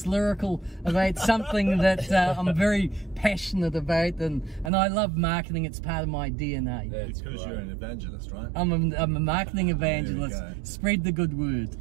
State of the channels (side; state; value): left; drops out; at 4.7 s